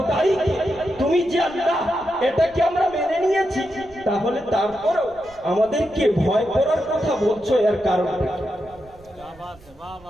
তুমি যে আল্লাহ এটাকে আমরা মেনে নিয়েছি। তাহলে তারপরেও আমাদেরকে ভয় করার কথা বলছো, এর কারণ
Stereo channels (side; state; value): right; noise; rumble, 24 dB below the sound